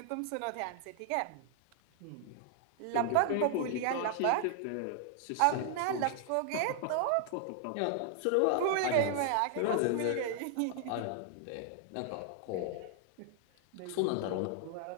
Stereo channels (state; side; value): different; both; correlation 0.00